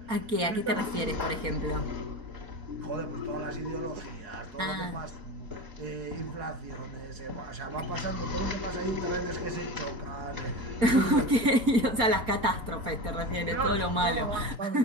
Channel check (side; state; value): left; late; 4.3 ms